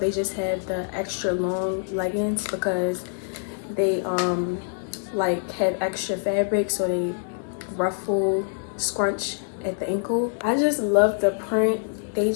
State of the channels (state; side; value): silent; right; digital silence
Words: just have the extra long leggings because they like have extra fabric, so they ruffle, scrunch at the ankle. I just love the print. They